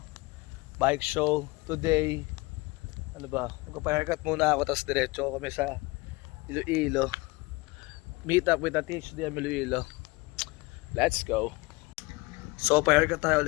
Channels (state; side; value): quieter; right; 23.8 dB